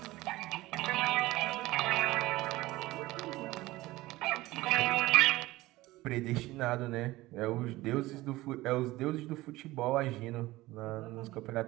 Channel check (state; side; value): quieter; left; 18.5 dB